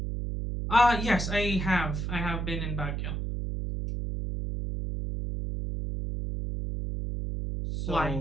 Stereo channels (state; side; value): noise; right; hum, 3 dB below the sound